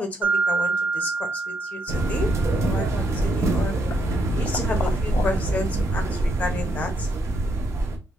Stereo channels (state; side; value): normal; both; correlation 0.76